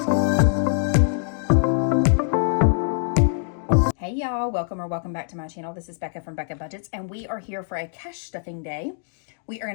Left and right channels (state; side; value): silent; right; digital silence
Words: y'all, welcome back to my channel. This is Becca from Becca Budgets, and we are here for a cash stuffing day. We are going